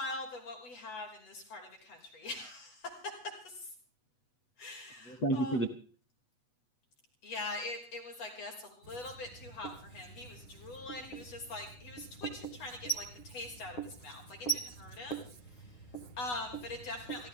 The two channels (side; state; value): right; late; 8.1 ms